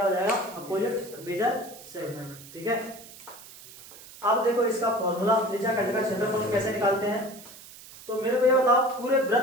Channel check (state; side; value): noise; right; hiss, 18 dB below the sound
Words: हो जाएगा, अपोजिट, मेजर सेगमेंट। ठीक है, अब देखो इसका फॉर्मूला, त्रिज्याखंड का क्षेत्रफल कैसे निकालते हैं। तो मेरे को ये बताओ, पूरे